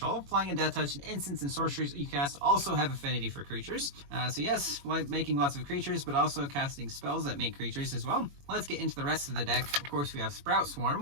Flying and Death Touch and instants and sorceries you cast also have Affinity for creatures. So yes, like making lots of creatures, but also casting spells that make creatures as well. Let's get into the rest of the deck. Of course, we have Sprout Swarm,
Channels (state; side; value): late; left; 21 ms